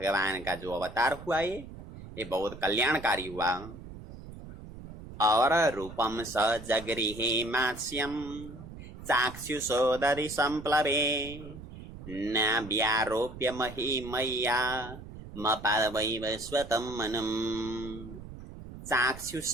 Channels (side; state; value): right; noise; rumble, 14 dB below the sound